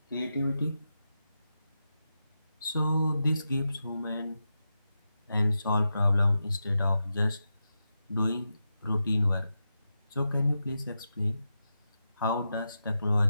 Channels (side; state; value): both; inverted; correlation -0.89